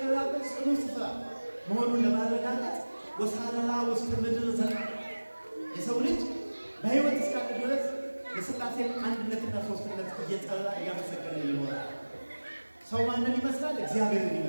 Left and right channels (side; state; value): both; inverted; correlation -1.00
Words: ጽኑ ስፍራ መሆኑን ለማረጋገጥ ወሳረራ ውስተ ምድር ዘለዓለም የሰው ልጅ በሕይወት እስካለ ድረስ የሥላሴን አንድነትና ሦስትነት እየጠራ እያመሰገነ ይኖራል። ሰው ማንን ይመስላል? እግዚአብሔርን